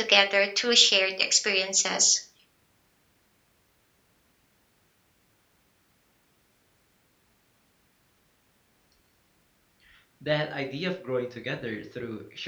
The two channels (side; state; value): both; identical; correlation 1.00